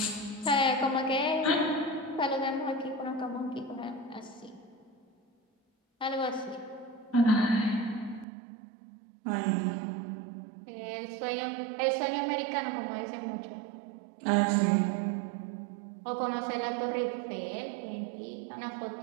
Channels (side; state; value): left; drops out; at 8.2 s